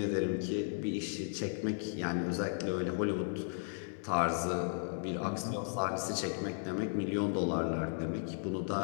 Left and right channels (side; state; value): right; silent; digital silence